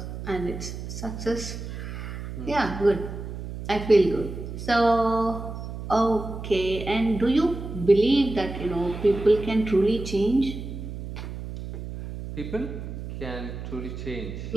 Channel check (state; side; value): noise; right; hum, 8 dB below the sound